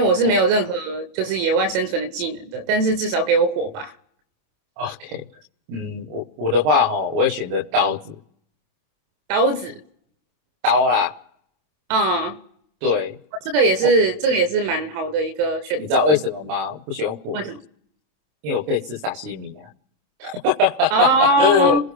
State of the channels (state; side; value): late; left; 27 ms